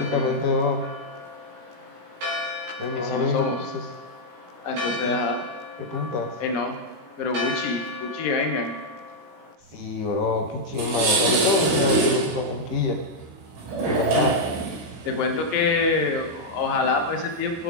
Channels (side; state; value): left; late; 17 ms